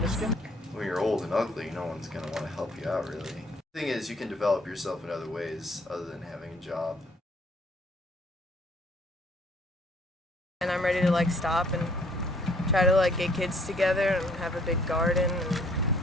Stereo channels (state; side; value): normal; both; correlation 0.62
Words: When you're old and ugly, no one's going to want to help you out, really. The thing is, you can develop yourself in other ways other than having a job. And I'm ready to like stop and try to like get kids together and have a big garden and